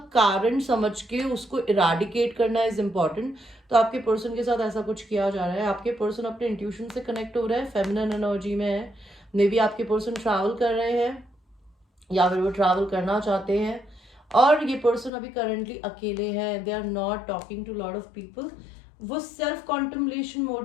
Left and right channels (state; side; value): drops out; right; at 15.1 s